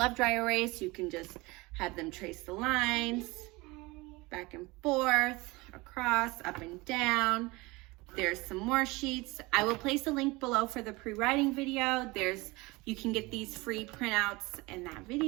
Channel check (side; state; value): left; quieter; 23.2 dB